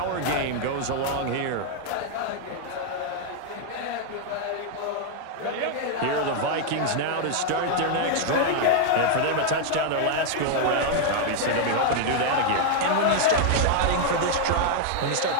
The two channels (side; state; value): both; different; correlation 0.00